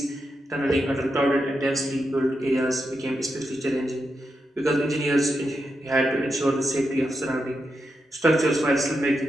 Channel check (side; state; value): both; normal; correlation 0.86